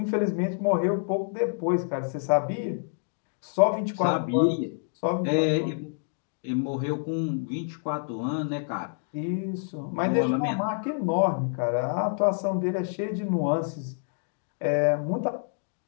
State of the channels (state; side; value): silent; right; digital silence